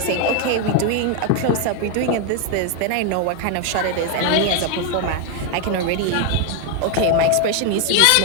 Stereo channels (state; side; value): different; both; correlation 0.01